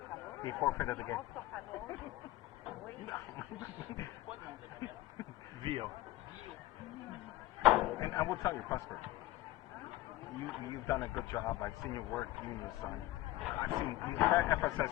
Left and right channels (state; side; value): quieter; right; 17.0 dB